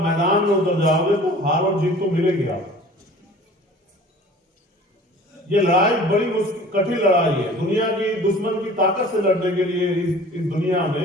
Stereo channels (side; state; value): both; normal; correlation 0.45